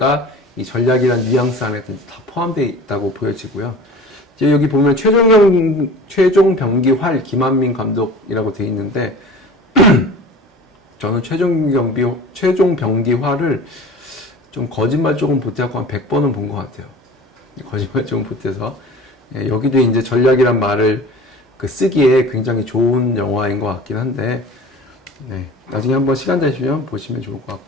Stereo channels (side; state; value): both; normal; correlation 0.40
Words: 이 전략이란 뉘앙스 안에 다 포함되어 있다고 보여지고요. 이제 여기 보면 최종 병기활 김한민 감독이라고 되어 있는데 저는 최종 병기활을 좀 거짓말 조금 보태고 한 100번은 본 것 같아요. 거짓말 조금 보태서 여기도 이제 전략이란 말을 쓰기에 굉장히 좋은 영화인 것 같긴 한데, 네, 나중에 한번 시간 되시면 보시면 좋을 것